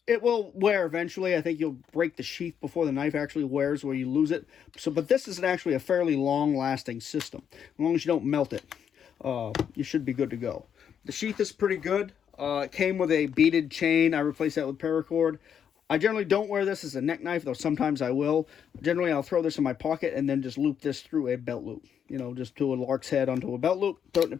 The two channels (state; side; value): quieter; right; 8.2 dB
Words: will wear eventually. I think you'll break the sheath before the knife actually wears, where you lose it. So, but this is actually a fairly long-lasting system. As long as you don't melt it, you should be good to go. The sheath is pretty good. It came with a beaded chain. I replaced that with paracord. I generally don't wear this as a neck knife, though sometimes I will. Generally, I'll throw this in my pocket and then just loop this through a belt loop. You know, just do a lark's head onto a belt loop, throw it in the